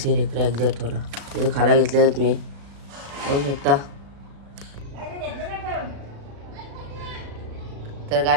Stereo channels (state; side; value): late; left; 36 ms